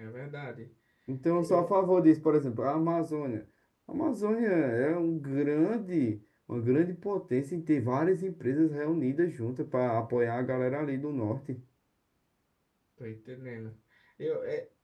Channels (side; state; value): both; identical; correlation 1.00